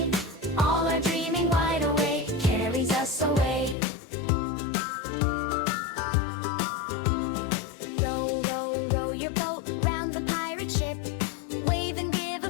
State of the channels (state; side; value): drops out; right; at 3.8 s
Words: All our dreaming wide awake carries us away. Row, row, row your boat round the pirate ship. Wave and give a